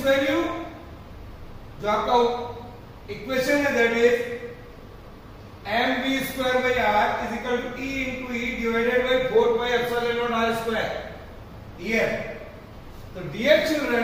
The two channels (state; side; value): identical; both; correlation 1.00